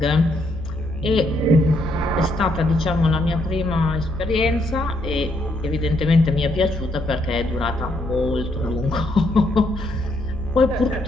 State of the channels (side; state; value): left; noise; hum, 10 dB below the sound